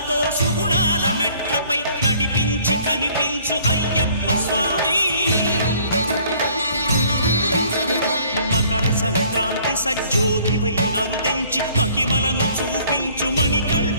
సుఖాలతో సుగుణాల మెట్లపై నడిపించి కనిపించు అయ్యప్ప స్వామి మకర సంక్రాంతి సజ్జోతివై అరుదెంచి మహిమలను చూపించు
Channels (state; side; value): inverted; both; correlation -0.57